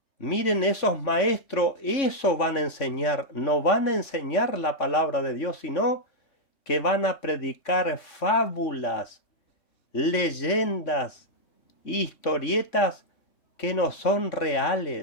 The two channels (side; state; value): right; late; 3.5 ms